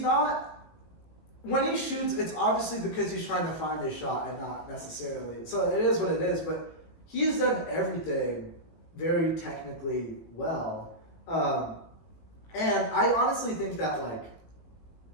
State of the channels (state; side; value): late; right; 18 ms